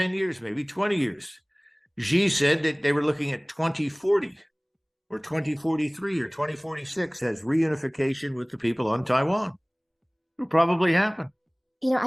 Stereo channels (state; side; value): identical; both; correlation 1.00